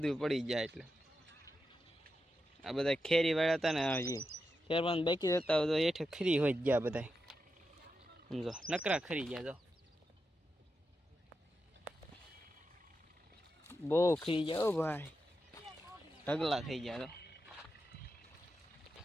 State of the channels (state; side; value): normal; both; correlation 0.88